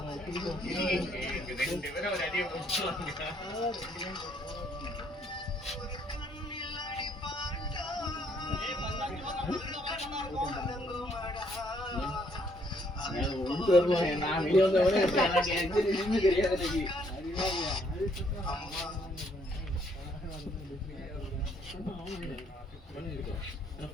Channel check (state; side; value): normal; both; correlation 0.68